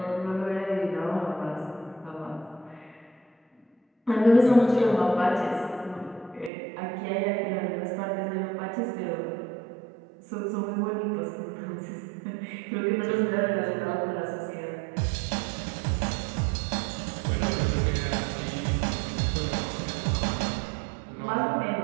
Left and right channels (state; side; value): drops out; left; at 6.5 s